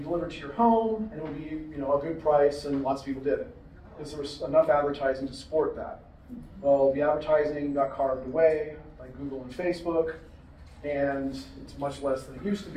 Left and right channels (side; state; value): both; identical; correlation 1.00